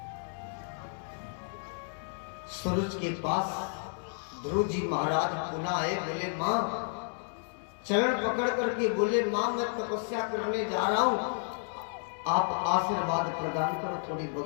सूरज के पास ध्रुव जी महाराज पुनः आए, बोले मां, चरण पकड़ करके बोले, मां मैं तपस्या करने जा रहा हूं, आप आशीर्वाद प्रदान करो। थोड़ी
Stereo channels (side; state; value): right; silent; 57 dB below the other